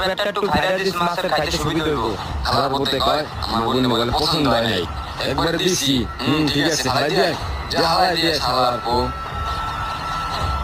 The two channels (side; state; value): both; identical; correlation 1.00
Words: একটু খাইরা দিস, মাছের খাইতে সুবিধা হইব। খালার বলতে কয় আমার বোনে বলে পছন্দ হয় নাই, একবারে দিছি। ঠিক আছে, ফালাই দিয়ে যা, হালাই দিয়ে শালার পো।